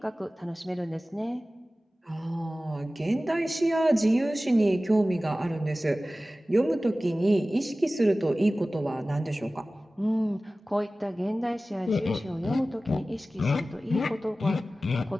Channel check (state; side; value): normal; both; correlation 0.96